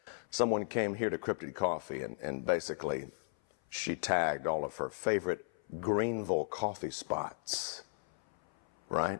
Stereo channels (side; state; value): right; silent; 55 dB below the other